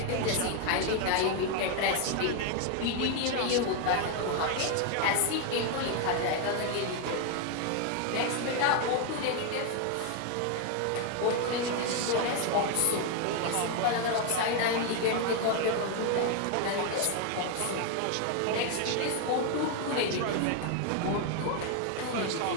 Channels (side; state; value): both; different; correlation 0.01